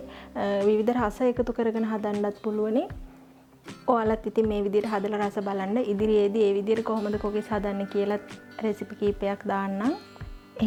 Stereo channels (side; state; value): both; identical; correlation 1.00